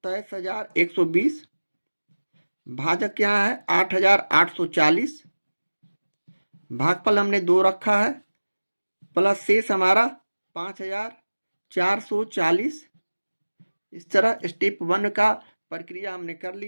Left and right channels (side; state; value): both; inverted; correlation -1.00